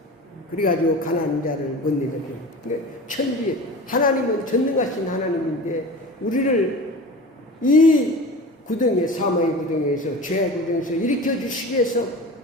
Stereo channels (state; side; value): normal; both; correlation 0.35